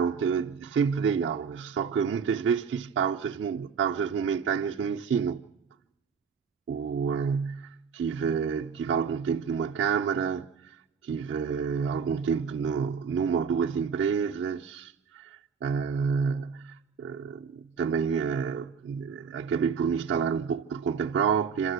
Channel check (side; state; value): left; quieter; 6.3 dB